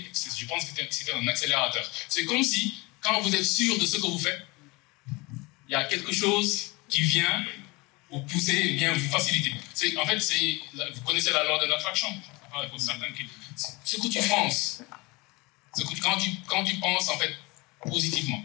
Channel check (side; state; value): right; quieter; 24.8 dB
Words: je pense que c'était un accélérateur. C'est comme si, quand vous êtes sûr de ce que vous faites, il y a quelque chose qui vient vous pousser, vient vous faciliter. En fait, vous connaissez la loi de l'attraction. Pour certains ce que tu penses, quand tu penses en fait positivement.